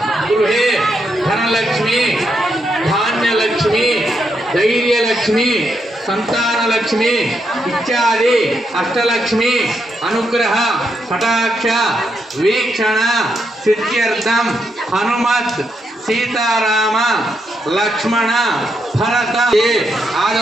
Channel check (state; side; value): normal; both; correlation 0.80